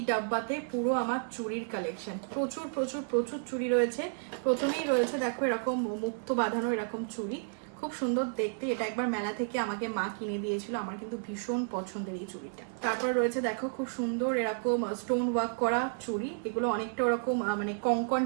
ডাব্বাতে পুরো আমার চুড়ির কালেকশন, প্রচুর প্রচুর প্রচুর চুড়ি রয়েছে। প্রথমেই রয়েছে দেখো এরকম মুক্ত বাঁধানো এরকম চুড়ি, খুব সুন্দর দেখতে। এটা একবার মেলা থেকে আমাকে মা কিনে দিয়েছিল, আমার কিন্তু ভীষণ পছন্দের এই চুড়িটা। তারপর রয়েছে দেখো খুব সুন্দর এরকম স্টোন ওয়ার্ক করা চুড়ি, এগুলো অনেকটা ওরকম মানে কঙ্কন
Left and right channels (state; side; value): silent; left; 57 dB below the other